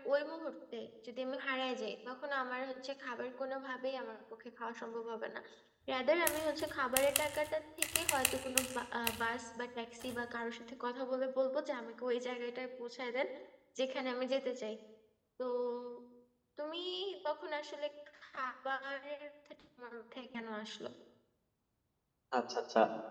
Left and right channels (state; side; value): identical; both; correlation 1.00